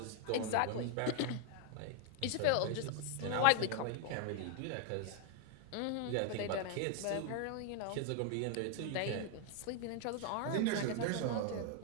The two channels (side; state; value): both; different; correlation 0.00